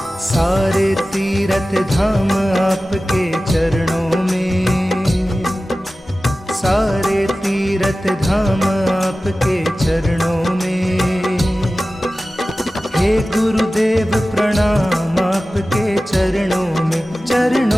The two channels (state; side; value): normal; both; correlation 0.96